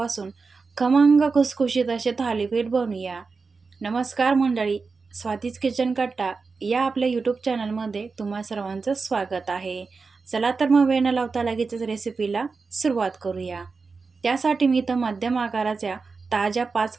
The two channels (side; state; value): left; quieter; 4.5 dB